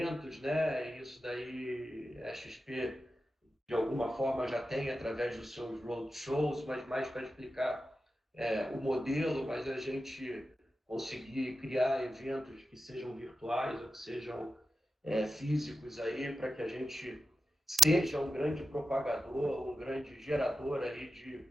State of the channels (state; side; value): normal; both; correlation 0.92